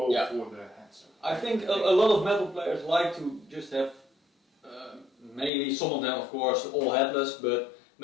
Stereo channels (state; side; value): drops out; right; at 5.5 s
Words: for the headstock. I think a lot of metal players like to just have, mainly some of them, of course, all headless, but